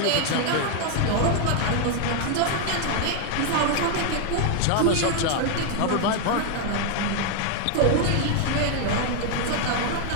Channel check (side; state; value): both; different; correlation 0.00